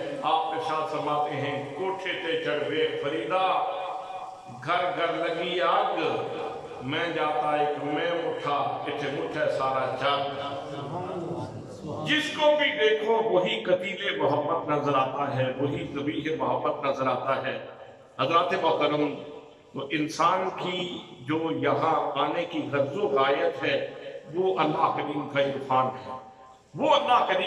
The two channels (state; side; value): identical; both; correlation 1.00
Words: آپ ارشاد فرماتے ہیں کوٹھے تے چڑھوے فریدا، گھر گھر لگی آگ، میں جاتا ایک میں مٹھا، اتھے مٹھے سارا جگ۔ جس کو بھی دیکھو وہی قتیل محبت نظر آتا ہے، وہی ذبیح محبت نظر آتا ہے۔ حضرات محترم، تو انسان کی جو یہاں آنے کی غرض و غایت ہے وہ اللہ کریم کا عرفان ہے، وہ اللہ